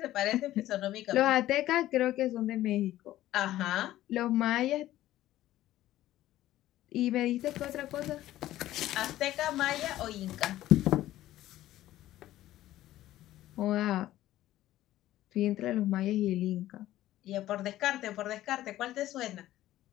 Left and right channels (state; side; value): quieter; right; 14.5 dB